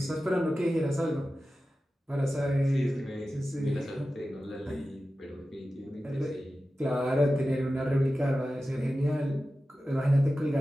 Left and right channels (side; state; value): both; normal; correlation 0.94